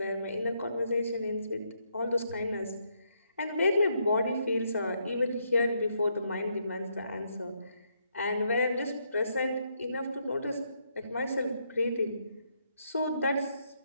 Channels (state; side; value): inverted; both; correlation -0.76